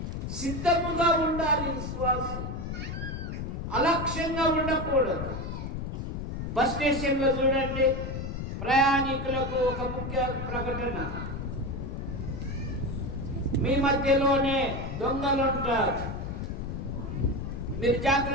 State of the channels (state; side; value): noise; left; rumble, 5 dB below the sound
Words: సిద్ధముగా ఉండాలి విశ్వాసం, అలక్ష్యంగా ఉండకూడదు. బస్ స్టేషన్లో చూడండి, ప్రయాణికులకు ఒక ముఖ్య ప్రకటన, మీ మధ్యలోనే దొంగలు ఉంటారు, మీరు